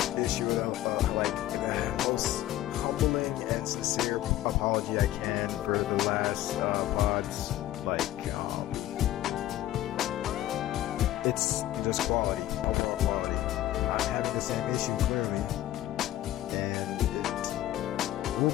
issue the most humbling and sincere apology I can for the last pods. It's just quality, overall quality. I'm having the same issue clearly, and it will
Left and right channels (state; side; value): quieter; right; 14.1 dB